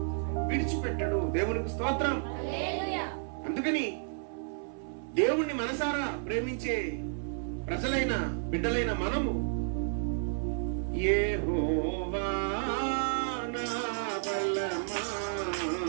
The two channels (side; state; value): left; silent; 57 dB below the other